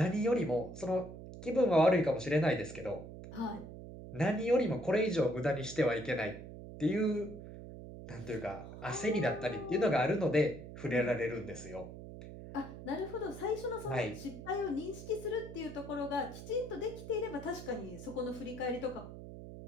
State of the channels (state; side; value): noise; right; hum, 12 dB below the sound